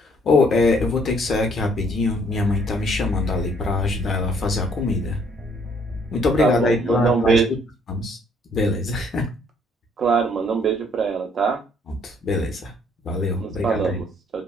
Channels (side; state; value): both; normal; correlation 0.64